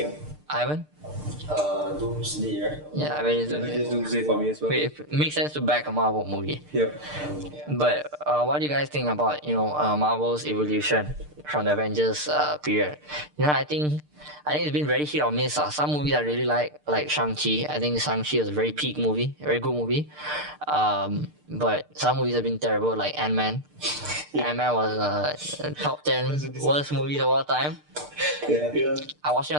Ivan? Doomsday, right? Yeah, I bet it's Just Doomsday for me as well. okay, it makes sense to back a Marvel movie. Yeah. But what do you guys think about Marvel's evolution from the Avengers period? I think it's been very hit or miss. Some movies I really like Shang-Chi. I think Shang-Chi was a very peak movie, very good movie. But some movies have been terrible, like Ant-Man. Ant-Man was top 10 worst movies of all time. Yeah. I watched it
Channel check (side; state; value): left; late; 6.7 ms